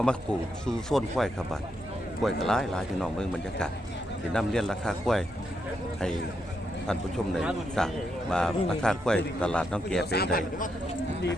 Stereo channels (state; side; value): normal; both; correlation 0.81